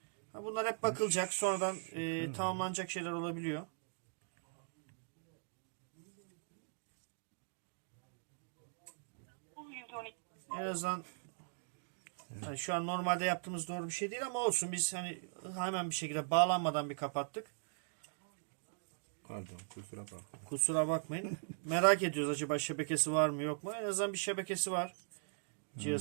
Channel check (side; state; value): left; silent; digital silence